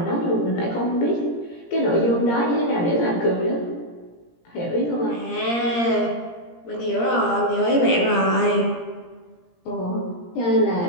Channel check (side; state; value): right; late; 17 ms